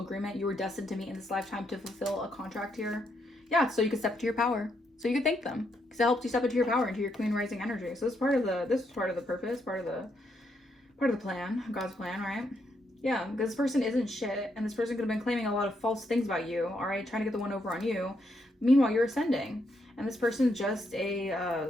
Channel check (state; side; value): normal; both; correlation 0.78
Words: You were destined to meet in this lifetime to fulfill a contract here. Yeah. So you could step into your power. So you could thank them because it helped you step into your power, into your queen rising energy. So this is part of the purpose, part of the plan, God's plan, right? Yeah. Because this person isn't shit. And this person could have been claiming a lot of false things about you. All right. Trying to get the one over on you. Meanwhile, you're ascending. And this person's just a